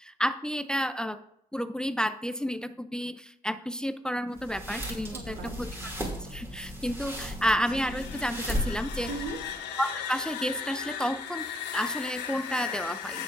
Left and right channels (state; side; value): normal; both; correlation 0.75